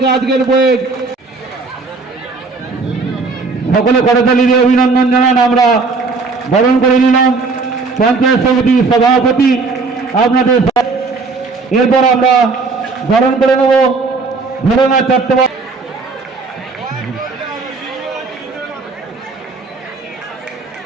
আজকের বইয়ে সকলে করতালি দিয়ে অভিনন্দন জানান। আমরা বরণ করে নিলাম পঞ্চায়েত সমিতির সভাপতি আপনাদের। এরপর আমরা বরণ করে নেব ধরনা চট্টোপাধ্যায়।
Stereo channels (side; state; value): left; quieter; 4.1 dB